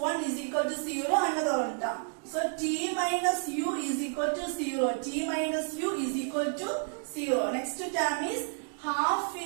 is equal to 0. Another one term. So t minus u is equal to 0. T minus u is equal to 0. Next term is half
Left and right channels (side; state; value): left; silent; 57 dB below the other